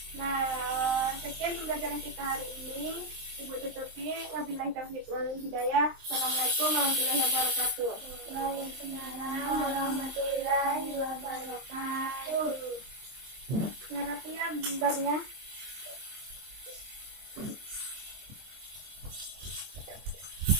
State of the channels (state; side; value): late; left; 23 ms